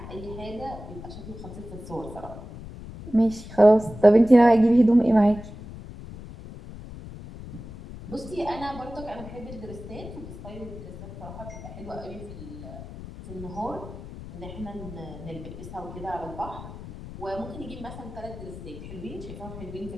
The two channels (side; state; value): left; noise; rumble, 13 dB below the sound